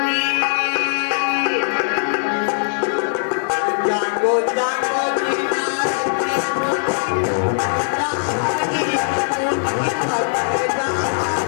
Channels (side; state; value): right; silent; 66 dB below the other